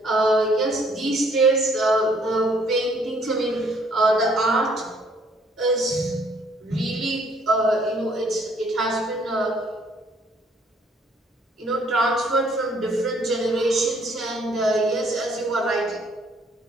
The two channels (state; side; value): normal; both; correlation 0.63